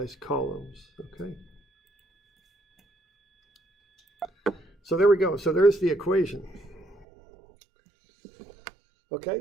columns, okay? So there we go. So there's the equation.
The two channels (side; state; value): left; drops out; at 7.1 s